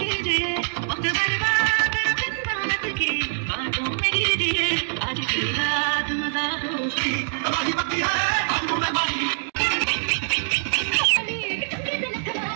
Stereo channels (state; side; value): silent; left; digital silence